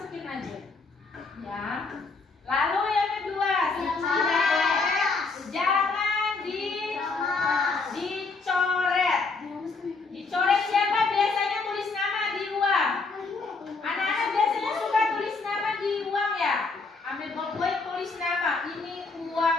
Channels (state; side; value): quieter; right; 4.0 dB